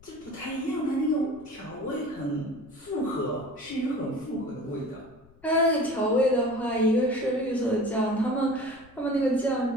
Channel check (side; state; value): left; noise; rumble, 26 dB below the sound